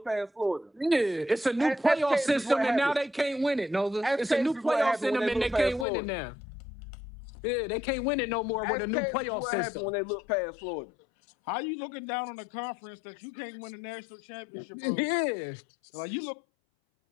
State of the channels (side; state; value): right; drops out; at 5.9 s